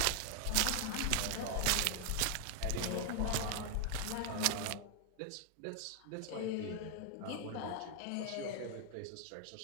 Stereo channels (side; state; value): both; different; correlation 0.00